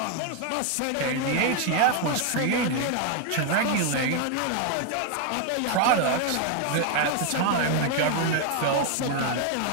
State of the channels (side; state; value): both; different; correlation 0.01